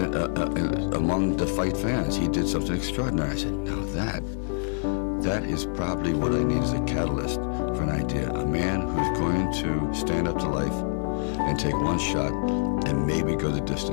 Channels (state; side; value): silent; right; 61 dB below the other